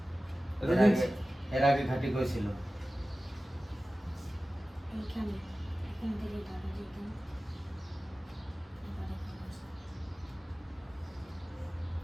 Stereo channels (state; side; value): normal; both; correlation 0.96